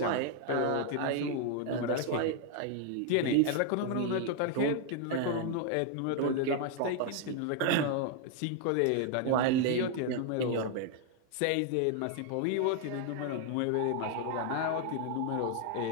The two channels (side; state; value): both; different; correlation 0.00